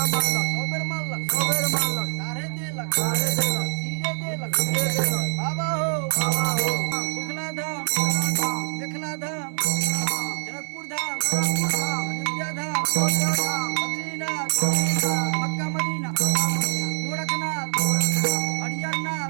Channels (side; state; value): left; silent; 62 dB below the other